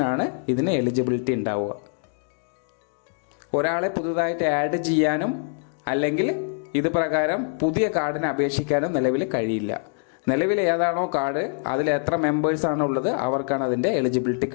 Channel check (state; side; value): silent; right; 55 dB below the other